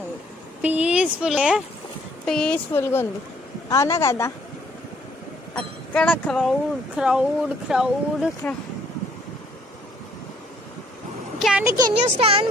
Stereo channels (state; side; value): normal; both; correlation 0.63